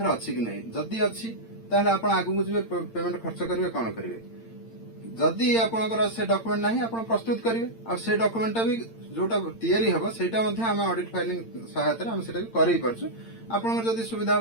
अछि कि नै, जदी अछि ताले आपण आगु जिवे पेमेंट खर्च करिवे कोन करिवे। जदी आपनकर से डॉक्यूमेंट नाही आपण प्रस्तुत करिवे आ से डॉक्यूमेंट भी जोटा तयारी हबो सेटा मध्ये हम ऑडिट फाइलिंग सहायता रे हम सेटा करै परछु। आपनकर जदी सुविधा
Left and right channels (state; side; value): late; right; 8.8 ms